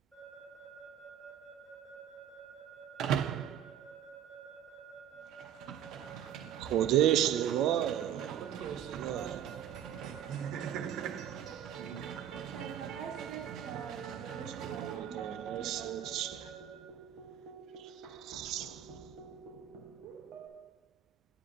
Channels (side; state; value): left; quieter; 10.1 dB